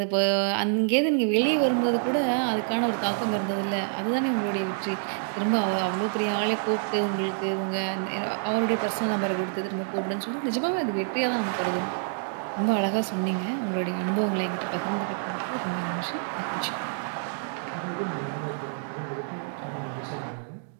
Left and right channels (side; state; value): left; silent; digital silence